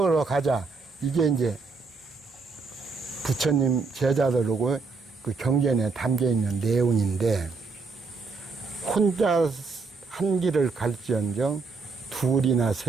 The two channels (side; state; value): left; quieter; 4.4 dB